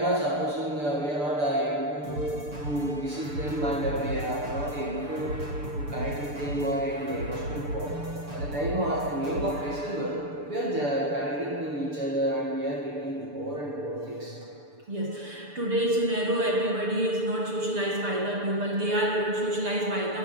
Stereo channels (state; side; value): late; left; 6.8 ms